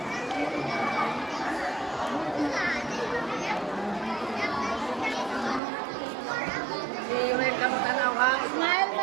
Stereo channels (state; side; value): drops out; left; at 5.6 s